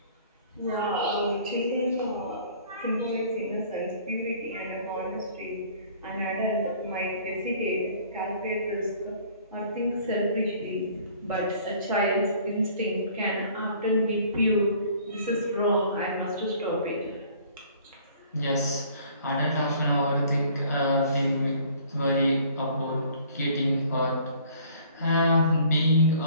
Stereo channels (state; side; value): inverted; both; correlation -0.54